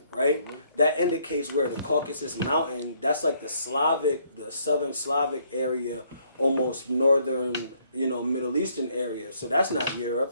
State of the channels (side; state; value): both; inverted; correlation -0.68